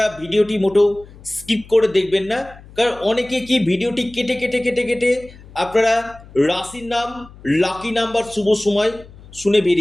ভিডিওটি মোটেও স্কিপ করে দেখবেন না, কারণ অনেকে কি ভিডিওটি কেটে কেটে কেটে কেটে আপনারা রাশির নাম, লাকি নাম্বার, শুভ সময় শুনে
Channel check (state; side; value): noise; left; hum, 21 dB below the sound